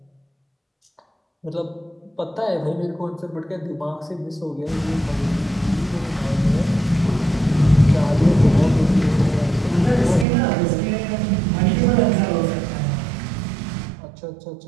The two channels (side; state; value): left; drops out; at 10.2 s